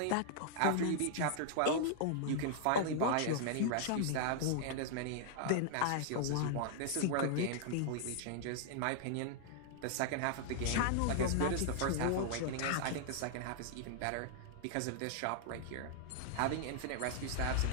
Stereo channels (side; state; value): both; different; correlation -0.01